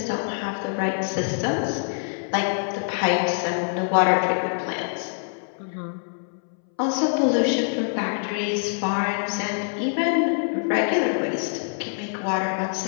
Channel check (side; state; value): right; silent; 62 dB below the other